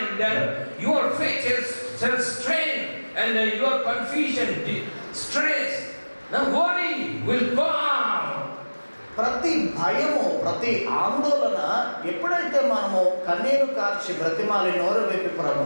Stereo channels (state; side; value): inverted; both; correlation -1.00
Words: then your faith shall strength and your confusion, stress, the worry will go out. ప్రతి భయము, ప్రతి ఆందోళన ఎప్పుడైతే మనము కన్నీరు కార్చి బ్రతిమాలి నోరు వైపు